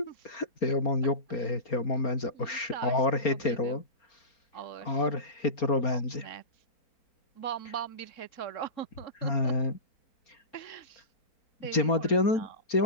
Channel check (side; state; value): right; late; 4.3 ms